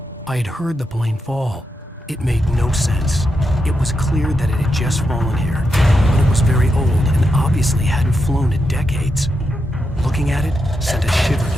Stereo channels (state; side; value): normal; both; correlation 0.85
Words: I had heard the plane fall. It made no sense. It was clear that it had just fallen here, but it was very old and obviously hadn't flown in decades. Looking at it sent a shiver